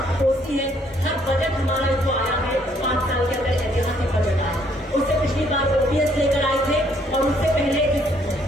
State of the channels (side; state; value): both; normal; correlation 0.66